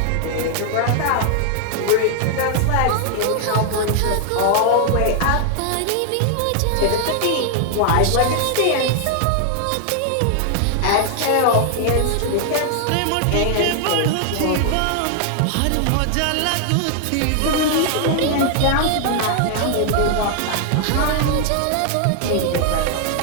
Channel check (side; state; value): both; different; correlation 0.00